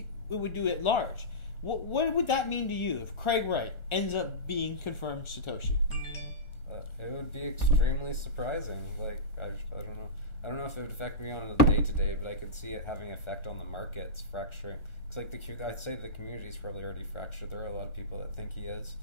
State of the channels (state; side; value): late; right; 1.4 ms